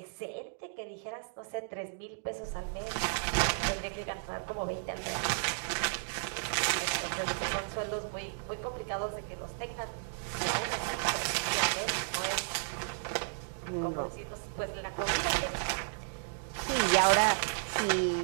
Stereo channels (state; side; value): silent; left; digital silence